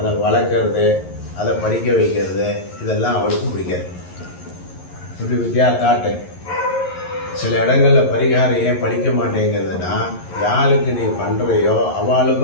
வளர்க்குறது, அதை படிக்க வைக்கிறது, இதெல்லாம் அவளுக்கும் பிடிக்காது. இப்படி வித்தியா காட்டு. சில இடங்களில் பரிகாரம் ஏன் படிக்க மாட்டேங்கிறதுனா, யாருக்கு நீ பண்ணுறையோ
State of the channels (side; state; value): right; late; 11 ms